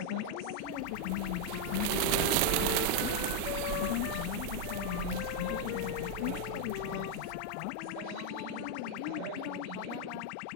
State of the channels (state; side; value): different; both; correlation 0.00